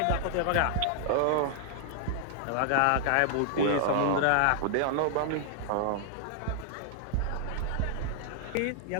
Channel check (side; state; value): both; different; correlation -0.01